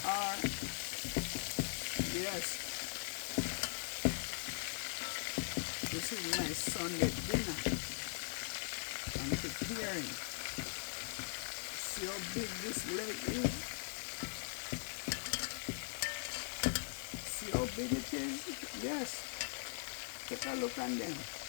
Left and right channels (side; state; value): right; silent; digital silence